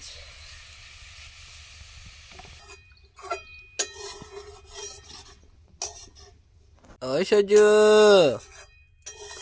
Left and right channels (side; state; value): both; identical; correlation 1.00